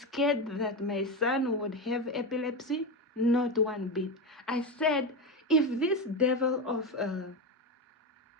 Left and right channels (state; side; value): normal; both; correlation 0.16